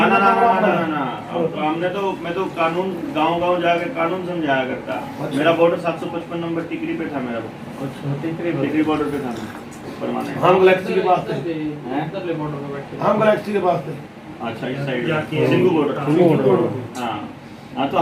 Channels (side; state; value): both; identical; correlation 1.00